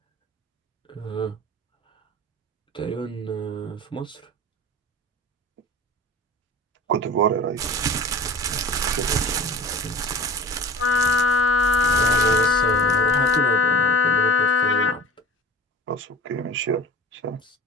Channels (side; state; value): both; normal; correlation 0.38